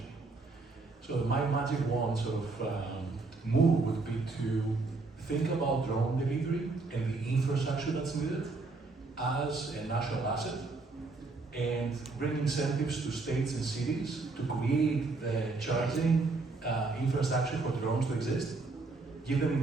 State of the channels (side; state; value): left; quieter; 3.7 dB